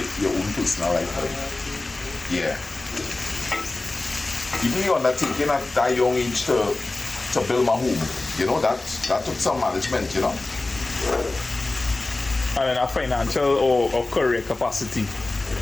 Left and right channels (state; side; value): quieter; right; 3.1 dB